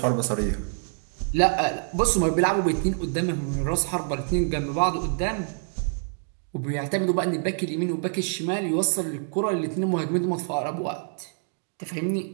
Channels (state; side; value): silent; left; 60 dB below the other